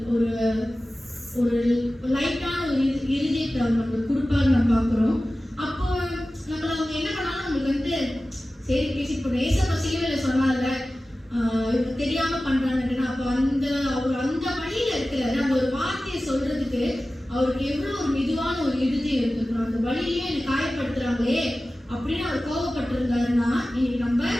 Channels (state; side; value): normal; both; correlation 0.96